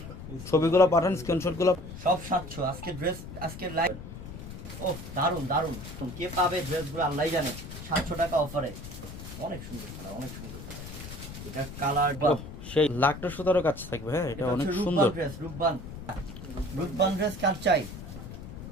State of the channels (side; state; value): left; noise; rumble, 11 dB below the sound